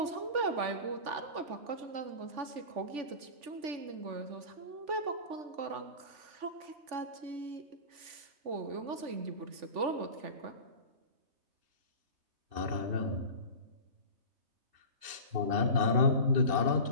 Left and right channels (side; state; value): left; late; 3.5 ms